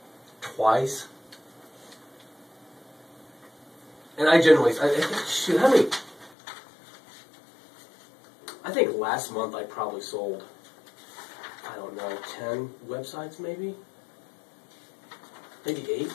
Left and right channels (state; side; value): drops out; right; at 6.4 s